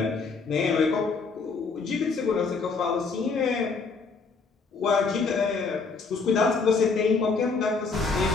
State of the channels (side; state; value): right; quieter; 4.6 dB